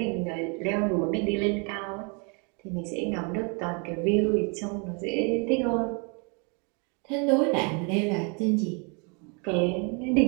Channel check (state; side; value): quieter; left; 34.7 dB